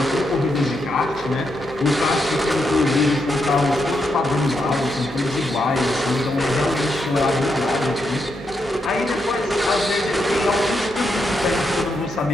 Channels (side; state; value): both; normal; correlation 0.82